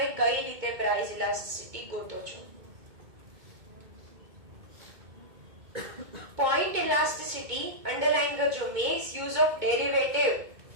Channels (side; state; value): left; late; 2.2 ms